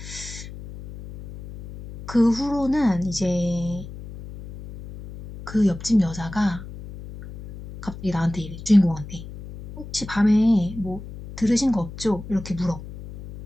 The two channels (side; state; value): left; noise; hum, 13 dB below the sound